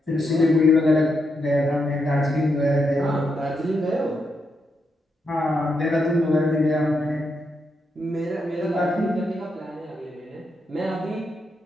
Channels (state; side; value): normal; both; correlation 0.82